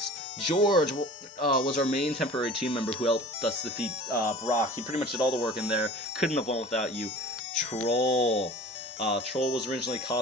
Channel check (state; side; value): normal; both; correlation 0.42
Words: George was our main temporary team member who helped us defeat Brock. He pretty much did all the work in there. Couldn't have won without you. Troll. Troll was originally